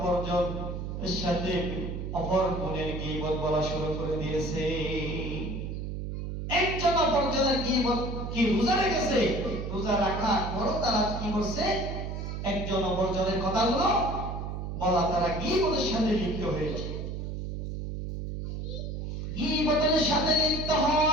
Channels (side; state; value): right; noise; hum, 5 dB below the sound